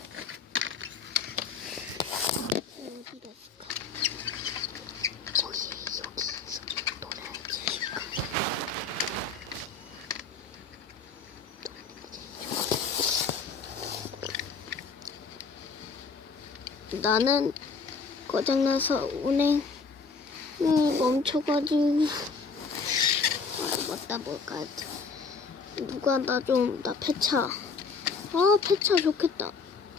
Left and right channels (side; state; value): right; quieter; 4.7 dB